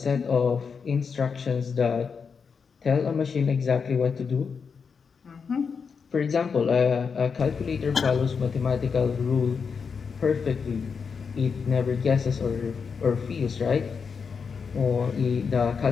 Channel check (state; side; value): quieter; right; 5.8 dB